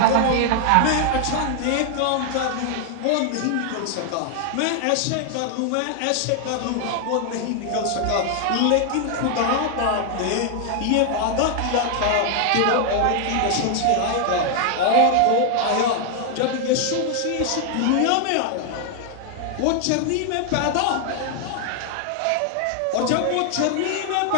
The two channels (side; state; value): both; different; correlation 0.00